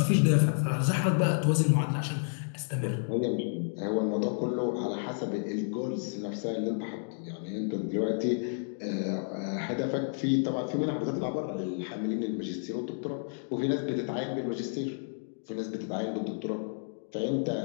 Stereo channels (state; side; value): silent; right; digital silence